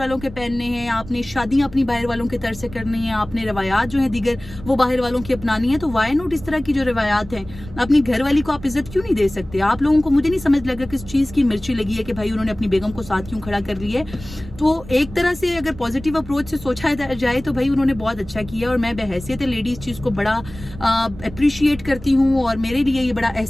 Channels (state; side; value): noise; right; rumble, 15 dB below the sound